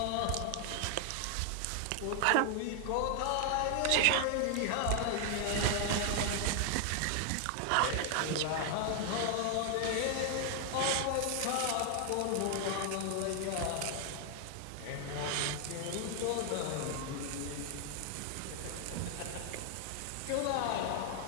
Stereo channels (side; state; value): both; different; correlation 0.00